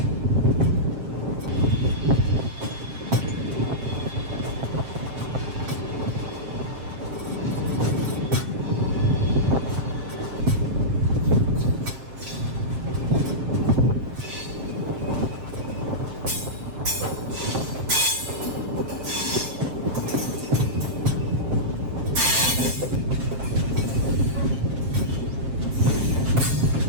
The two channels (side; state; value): left; late; 7.5 ms